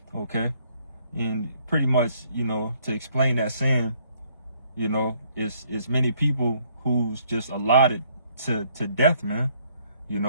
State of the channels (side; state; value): both; inverted; correlation -0.66